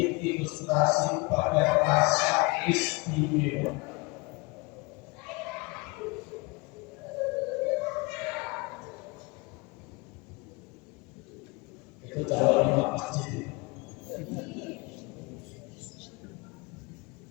ilustrasi pada rasa istimewa. Itu calon imam masjid.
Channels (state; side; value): quieter; right; 25.8 dB